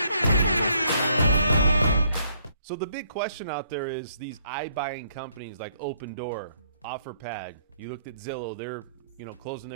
So the big question out there is these iBuying companies like Opendoor, OfferPad. You looked at Zillow, they're closing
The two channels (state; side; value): inverted; both; correlation -0.68